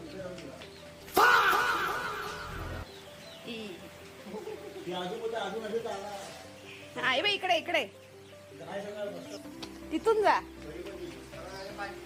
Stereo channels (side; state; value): both; identical; correlation 1.00